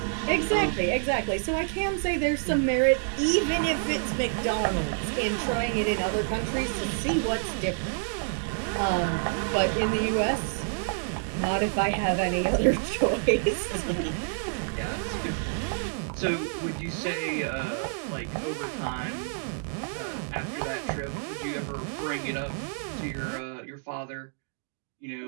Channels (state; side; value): silent; left; 59 dB below the other